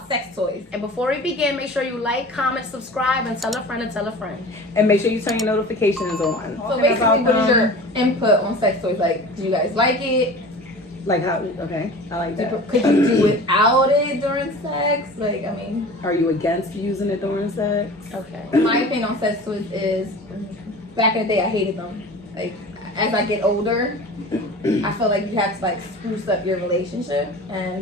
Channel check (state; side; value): normal; both; correlation 0.38